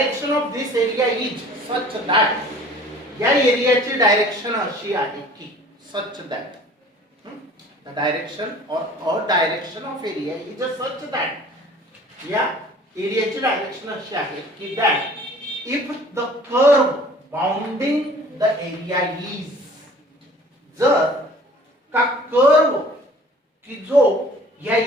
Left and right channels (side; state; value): both; normal; correlation 0.49